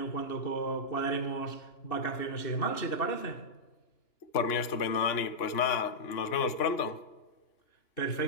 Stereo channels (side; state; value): right; late; 2.9 ms